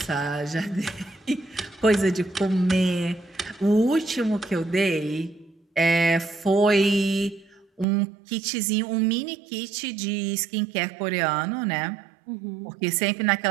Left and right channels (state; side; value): drops out; left; at 7.9 s